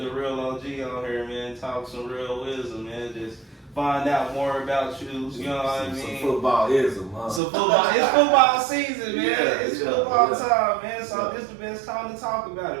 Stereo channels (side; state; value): left; drops out; at 7.4 s